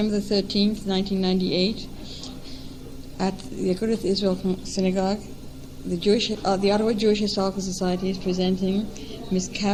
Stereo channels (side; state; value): both; identical; correlation 1.00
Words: the 13th, 1998, at the Agudath Israel Synagogue. The Ottawa Jewish Historical Society is presenting Ms.